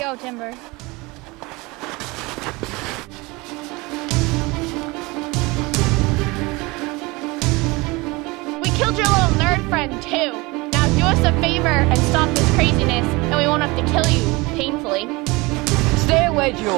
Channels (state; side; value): quieter; left; 24.0 dB